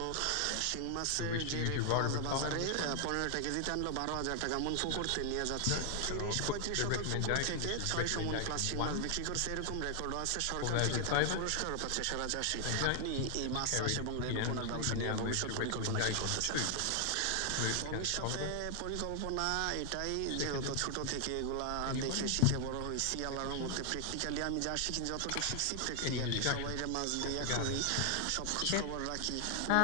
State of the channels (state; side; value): different; both; correlation 0.00